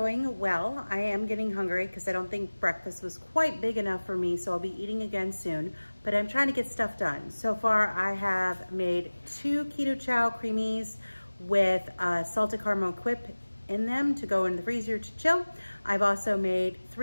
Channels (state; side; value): inverted; both; correlation -1.00